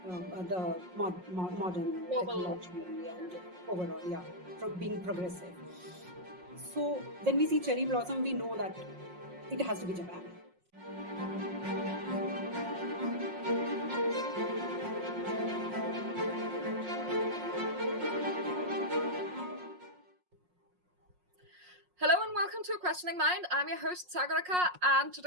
the modern Global. technology and overall, yeah, being progressive. So when we see cherry blossom, we know that it has to be Japan. Hello and welcome to Questioning Mind. I'm your host Sagarika, and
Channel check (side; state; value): left; late; 5.5 ms